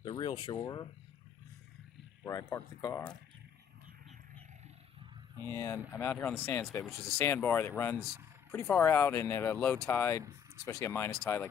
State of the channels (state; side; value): quieter; right; 8.0 dB